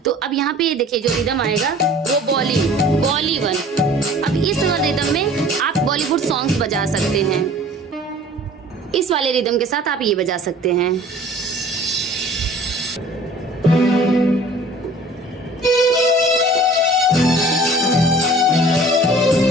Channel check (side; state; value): both; normal; correlation 0.48